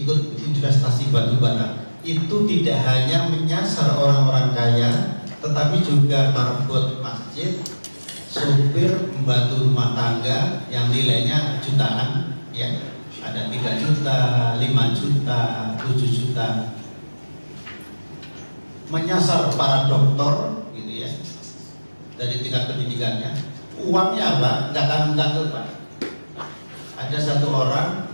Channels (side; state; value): both; inverted; correlation -1.00